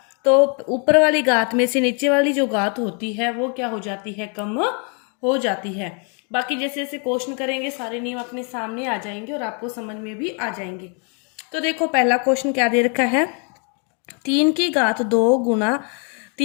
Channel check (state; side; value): quieter; right; 38.1 dB